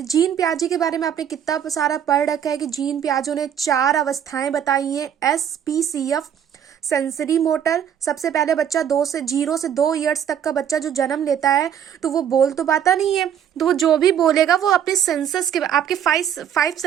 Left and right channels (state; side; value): quieter; left; 9.1 dB